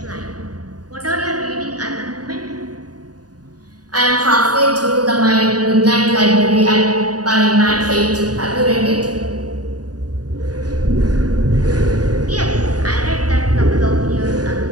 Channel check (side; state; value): left; late; 0.68 ms